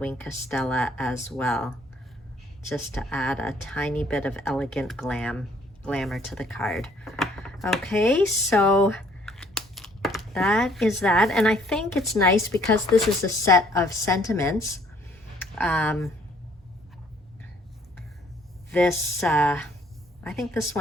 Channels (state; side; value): normal; both; correlation 0.61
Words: of Stella as well, just to add a tiny bit of elegant glamour to the card. Okay, so that is that, and I think it's nice because this is a set of sentiments. I think this